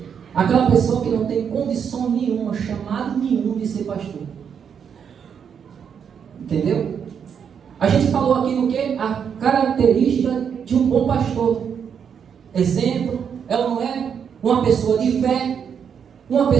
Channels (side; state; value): left; quieter; 7.4 dB